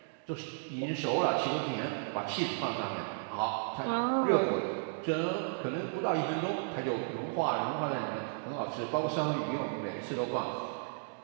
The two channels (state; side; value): silent; left; digital silence